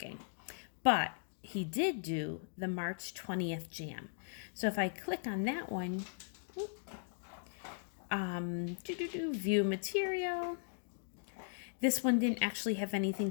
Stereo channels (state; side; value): silent; right; digital silence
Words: But he did do the March 20th jam. So if I click on that one, view material. This one didn't actually have anything